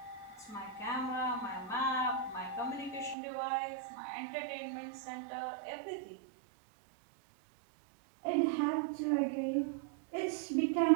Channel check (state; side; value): drops out; left; at 3.2 s